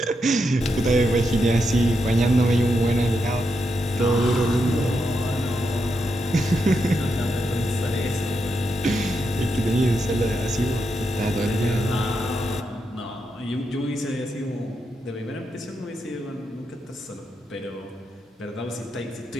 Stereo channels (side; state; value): both; normal; correlation 0.83